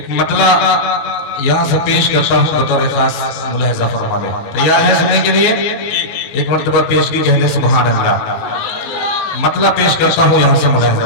मतला यहाँ से पेश करता हूँ बतौर खास मुलाहिजा फरमा ले। तैयार है सुनने के लिए? एक मर्तबा पेश की कहने सुभान अल्लाह। मतलब पेश करता हूँ यहाँ से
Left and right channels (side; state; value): right; late; 19 ms